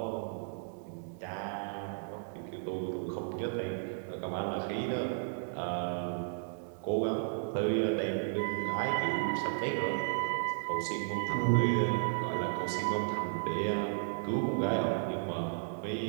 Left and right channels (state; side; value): silent; left; digital silence